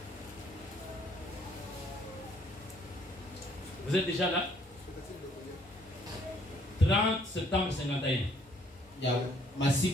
Vous êtes déjà là? 30 septembre 51. Ya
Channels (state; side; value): normal; both; correlation 0.64